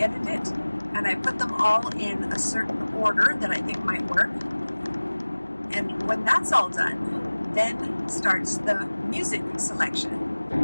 it, and I put them all in a certain order that I think might work. And when that's all done, then starts the music selection.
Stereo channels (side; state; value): both; inverted; correlation -1.00